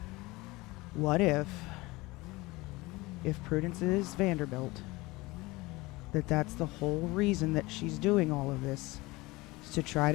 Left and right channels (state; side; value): quieter; right; 21.9 dB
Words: What if Prudence is Vanderbilt, that's the whole reason that she's doing all of this, is to try